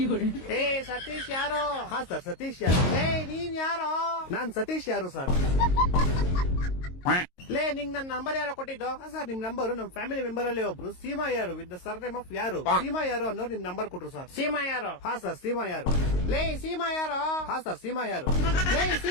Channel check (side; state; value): right; late; 22 ms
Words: ಏ ಸತೀಶ್ ಯಾರು? ಹಾ ಸರ್, ಸತೀಶ್ ಯಾರು. ಏ ನೀನ್ ಯಾರು? ನಾನ್ ಸತೀಶ್ ಯಾರು ಸರ್. ಲೇ ನಿಂಗ್ ನನ್ ನಂಬರ್ ಯಾರೋ ಕೊಟ್ಟಿದ್ದು? ಹಾ ಸರ್, ನಿಮ್ ನಂಬರ್ ನಮ್ ಫ್ಯಾಮಿಲಿ ಮೆಂಬರ್ ಅಲ್ಲಿ ಒಬ್ರು ಸೀಮಾ ಯಾರು ವಿತ್ ದ ಸರ್ನೇಮ್ ಆಫ್ ಯಾರು. ಸೀಮಾ ಯಾರು ಅನ್ನೋರು ನಿಮ್ ನಂಬರ್ ಕೊಟ್ರು ಸರ್. ಸೀಮಾ ಯಾರು? ಹಾ ಸರ್, ಸೀಮಾ ಯಾರು. ಲೇ ಸೀಮಾ ಯಾರು? ಹಾ ಸರ್, ಸೀಮಾ ಯಾರು. ಲೇ